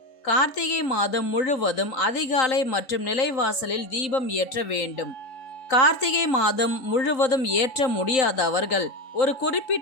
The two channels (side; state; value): right; late; 3.8 ms